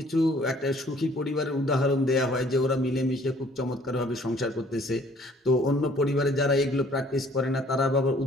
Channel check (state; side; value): normal; both; correlation 0.58